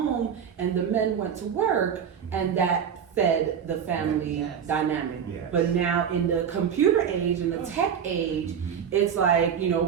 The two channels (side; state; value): left; quieter; 7.8 dB